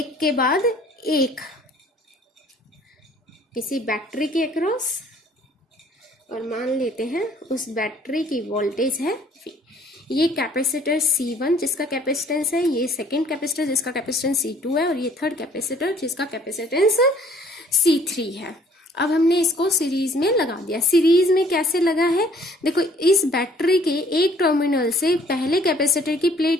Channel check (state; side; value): normal; both; correlation 0.58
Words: के बाद एक, किसी बैटरी के अक्रॉस, और मान लेते हैं उस बैटरी की वोल्टेज है V। ये कैपेसिटर C1 जिसका कैपेसिटेंस है, ये सेकंड कैपेसिटर जिसका कैपेसिटेंस C2 है, और ये थर्ड कैपेसिटर जिसका कैपेसिटेंस C3 है। अब हमने इसको सीरीज में लगा दिया। सीरीज में कैसे लगा है, देखो इस बैटरी के एक टर्मिनल से पहले कैपेसिटर की